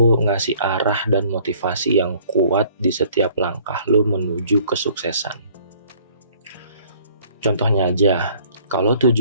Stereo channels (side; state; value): both; inverted; correlation -0.57